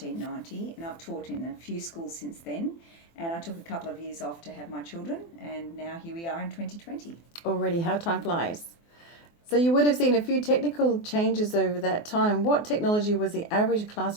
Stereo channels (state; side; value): late; right; 24 ms